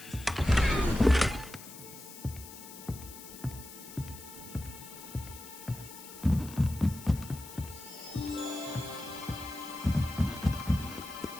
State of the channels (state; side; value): noise; left; hiss, 15 dB below the sound